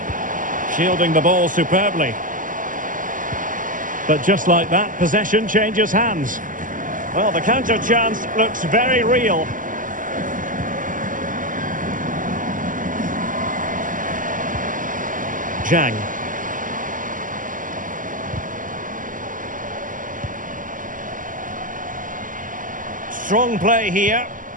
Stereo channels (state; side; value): late; left; 0.38 ms